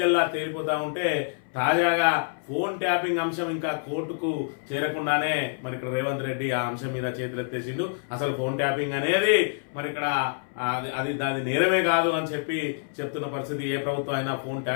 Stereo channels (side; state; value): right; silent; 59 dB below the other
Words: తేలిపోతా ఉంటే, తాజాగా ఫోన్ ట్యాపింగ్ అంశం ఇంకా కోర్టుకు చేరకుండానే మరి ఇక్కడ రేవంత్ రెడ్డి ఆ అంశం మీద చేతులెత్తేసిండు. అసలు ఫోన్ ట్యాపింగ్ అనేది మరి ఇక్కడ అది దాని నేరమే కాదు అని చెప్పి చెప్తున్న పరిస్థితి. ఏ ప్రభుత్వం అయినా ఫోన్